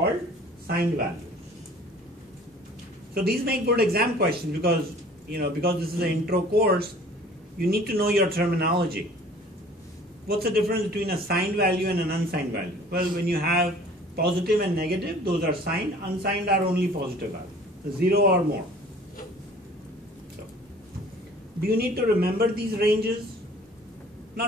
signed values. So these make good exam questions because, because this is an intro course, you need to know your terminology. What's the difference between a signed value and an unsigned value? Well, when you have positive and negative, those are signed. Unsigned are only positive values, 0 or more. So, do you need to remember these ranges?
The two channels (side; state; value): both; normal; correlation 0.50